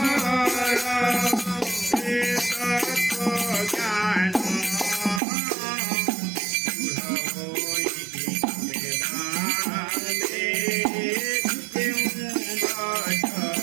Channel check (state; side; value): drops out; left; at 5.2 s